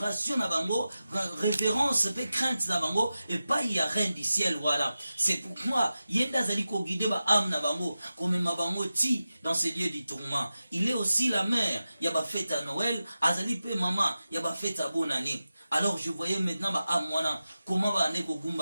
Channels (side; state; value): both; inverted; correlation -0.93